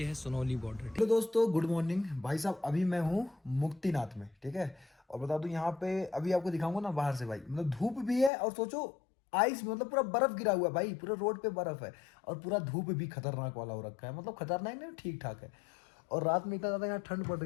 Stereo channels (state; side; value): drops out; right; at 8.3 s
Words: है सोनौली बॉर्डर। हेलो दोस्तों, गुड मॉर्निंग भाई साहब। अभी मैं हूँ मुक्तिनाथ में, ठीक है। और बता दूं यहाँ पे अभी आपको दिखाऊंगा ना बाहर से भाई, मतलब धूप भी है और सोचो आइस, मतलब पूरा बर्फ गिरा हुआ है भाई, पूरा रोड पे बर्फ है। और पूरा धूप भी खतरनाक वाला हो रखा है, मतलब खतरनाक नहीं, ठीक ठाक है। और रात में इतना ज़्यादा यहाँ ठंड पड़